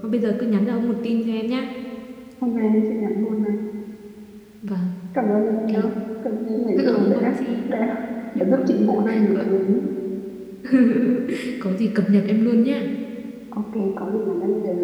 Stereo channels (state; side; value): identical; both; correlation 1.00